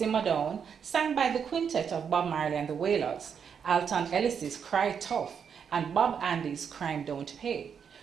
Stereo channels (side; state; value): left; quieter; 7.1 dB